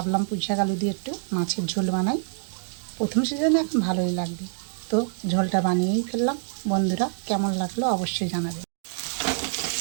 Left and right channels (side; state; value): left; silent; digital silence